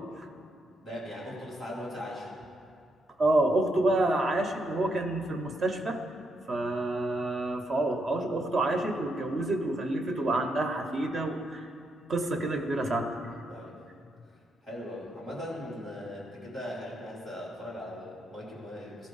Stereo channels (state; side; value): normal; both; correlation 0.79